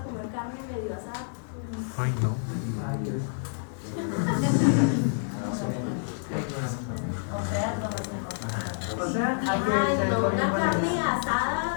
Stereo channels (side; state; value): right; silent; digital silence